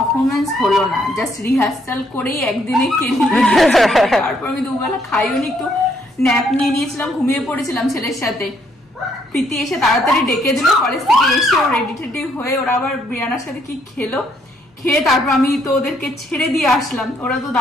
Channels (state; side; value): normal; both; correlation 0.70